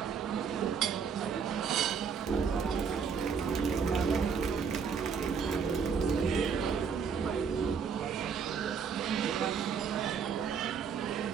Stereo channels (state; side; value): quieter; left; 6.4 dB